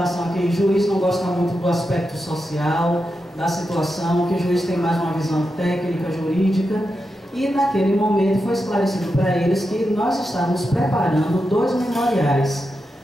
a que o juiz não gosta muito do aspecto social, da situação, que o juiz tem mais uma visão técnica, jurídica, e naquele momento foi esclarecido para eles que nós estávamos preparando 2 memoriais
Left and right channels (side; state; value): both; normal; correlation 0.88